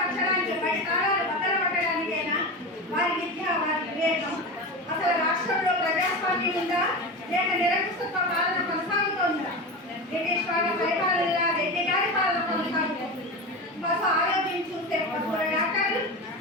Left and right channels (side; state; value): both; normal; correlation 0.24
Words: బయట తాళాలు బద్దలు పట్టడానికైనా వారి విద్య వారి వివేకం. అసలు రాష్ట్రంలో ప్రజాస్వామ్యం ఉందా లేక నిరంకుశత్వ పాలన కొనసాగుతోందా? బ్రిటిష్ వాళ్ళ పరిపాలనలా రెడ్డి గారి పాలన కొనసాగుతుంది. పశు ఆరోగ్యం చూస్తే పశువుల డాక్టర్లు,